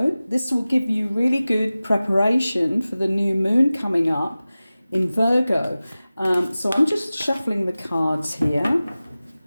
this will give you really good preparation for the new moon coming up in Virgo. So I'm just shuffling the cards here.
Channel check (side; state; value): both; inverted; correlation -0.97